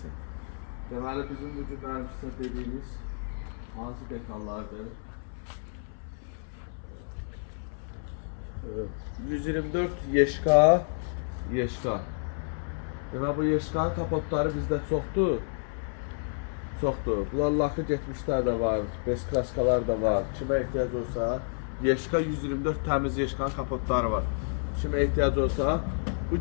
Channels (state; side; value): silent; right; 58 dB below the other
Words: Deməli, bizim bugün mənim sizə dediyimiz hansı detallardır? 124 Yeşka. Deməli, bu Yeşkanın kapotları bizdə çoxdur. Bunlar lakı getmişlər də var, beskraskalar da var. Kimə ehtiyac olsa, Yeşka 124 təmiz Yeşkanın kapotları var. Kimə ehtiyac olsa, bu